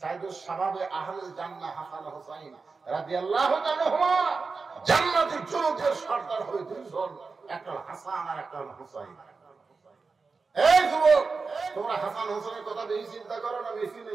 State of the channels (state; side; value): quieter; left; 4.4 dB